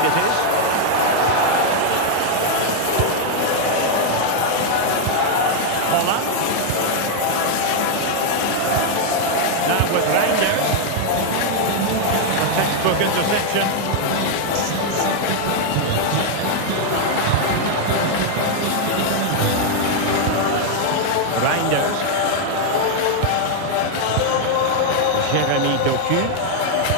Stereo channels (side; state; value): both; different; correlation 0.00